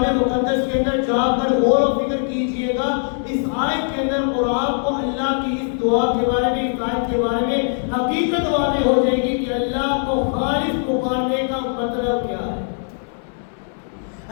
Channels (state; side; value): silent; right; 65 dB below the other